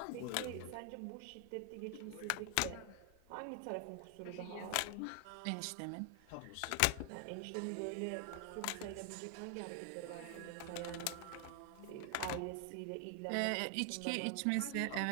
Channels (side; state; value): both; different; correlation 0.00